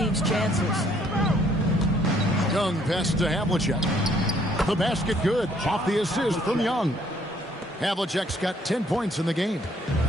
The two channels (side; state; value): both; normal; correlation 0.64